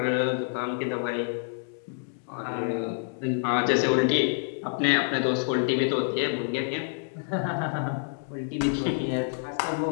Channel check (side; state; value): right; silent; digital silence